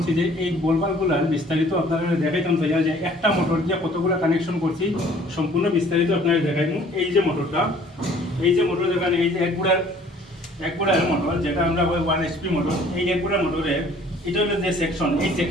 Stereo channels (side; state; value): both; normal; correlation 0.55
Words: যে এই বলবালগুলার বিস্তারিত আপনারা দেখাইতাম চাই যে একটা মোটর দিয়ে কতগুলো কানেকশন করছি সম্পূর্ণ বিস্তারিত আপনারা দেখাইব। এই যে মোটরটা, এই যে মোটর দেখান, এই যে এক গুড়ার মোটর, যেটা আমরা 1 HP মোটর, এই এক গুড়ার মোটরের এটা হলো যে সেকশন, এই